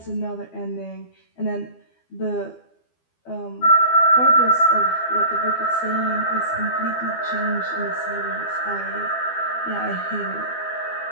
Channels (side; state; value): right; late; 12 ms